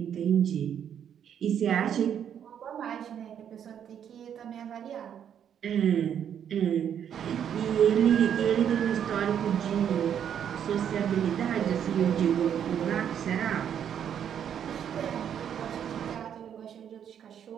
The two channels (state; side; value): quieter; left; 8.9 dB